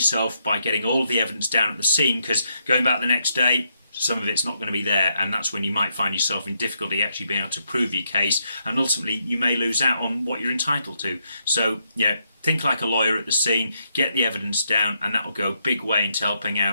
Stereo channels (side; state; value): both; inverted; correlation -0.78